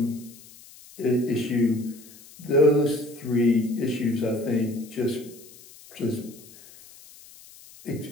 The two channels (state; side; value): noise; left; hiss, 21 dB below the sound